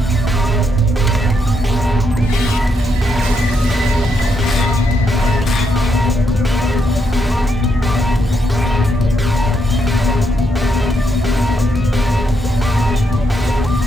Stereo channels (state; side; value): normal; both; correlation 0.79